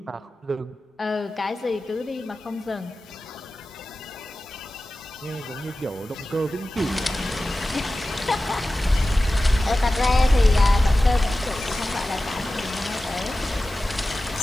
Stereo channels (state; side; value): normal; both; correlation 0.95